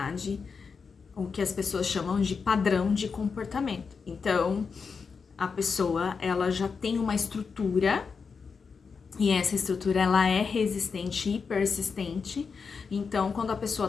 o que as pessoas chamam de padrão de comportamento. Então, a pessoa, ela já tem uma estrutura, e essa estrutura, ela é resistente e persistente. Então, quando a pessoa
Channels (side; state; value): right; quieter; 5.4 dB